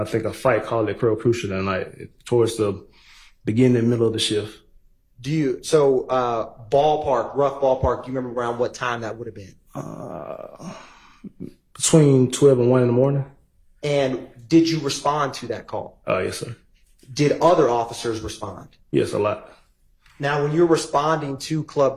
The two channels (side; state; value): both; identical; correlation 1.00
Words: think a fight call at Club Crucial that night towards the beginning and middle of the shift. Rough ballpark, do you remember around what time that would have been? Between 12 and 1 in the morning. And did you respond to that call? Yes, sir. Did other officers respond? Yes, a lot. Now, when you're responding to